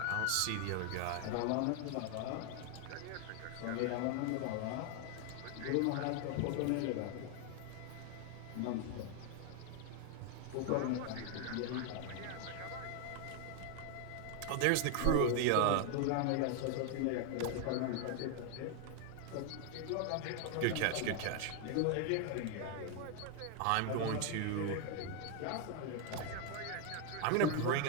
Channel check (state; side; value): different; both; correlation 0.00